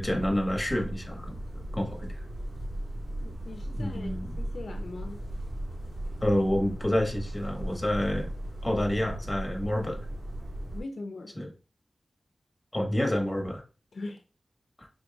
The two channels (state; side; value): normal; both; correlation 0.97